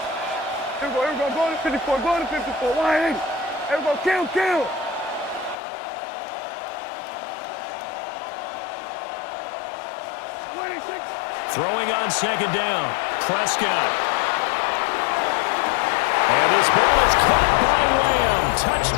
Here we go, going to 54, wide in. Here we go, kill. 26. Throwing on 2nd down. Prescott. And his ball is caught by Lamb.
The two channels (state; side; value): drops out; right; at 5.6 s